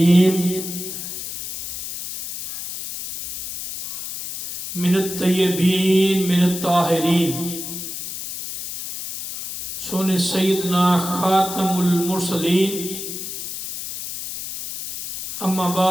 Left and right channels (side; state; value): left; noise; hiss, 8 dB below the sound